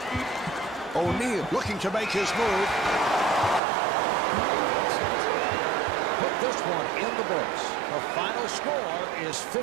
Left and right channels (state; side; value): drops out; left; at 3.6 s